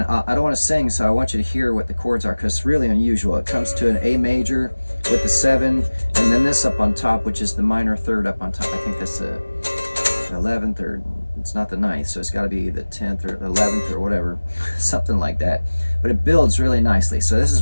I don't want to sing, so I want you to hear what the chords are, because it's really unusual. It comes to an A major with the 7, and then this up on top, which is the minor third up on top. I think that's the 11th, or it's not the 9th, so it's got to be the 10th or 11th or whatever, something like that. But it builds really nicely. So this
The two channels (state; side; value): inverted; both; correlation -1.00